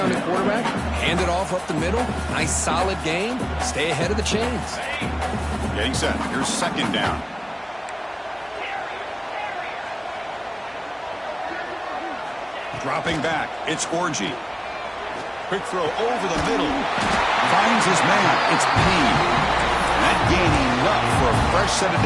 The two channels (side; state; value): both; identical; correlation 1.00